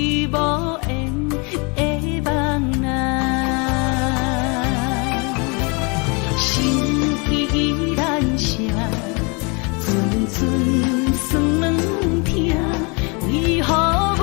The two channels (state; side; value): quieter; right; 31.4 dB